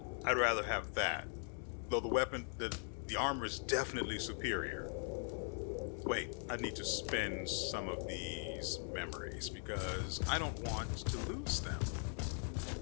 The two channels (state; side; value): silent; right; 51 dB below the other